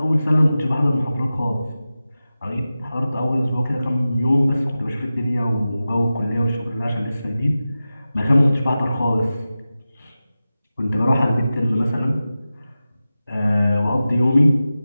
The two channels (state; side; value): inverted; both; correlation -0.95